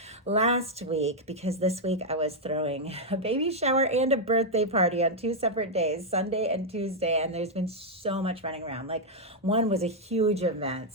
last week, because this week I was throwing a baby shower and a birthday party on 2 separate days, Sunday and Tuesday, and there's been so much running around. Like, one was a huge event.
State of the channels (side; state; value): both; normal; correlation -0.01